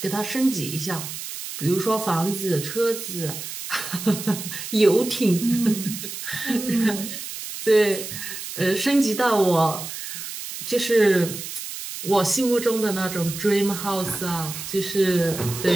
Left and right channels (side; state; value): right; noise; hiss, 8 dB below the sound